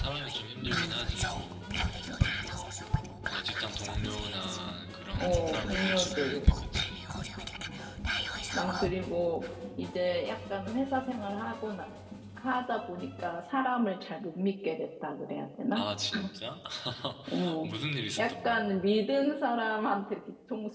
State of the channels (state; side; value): identical; both; correlation 1.00